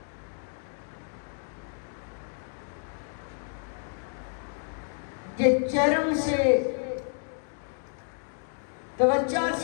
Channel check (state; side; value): silent; right; digital silence